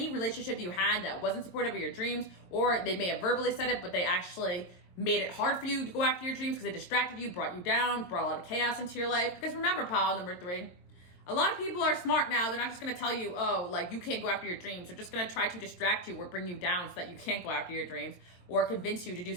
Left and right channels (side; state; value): right; late; 22 ms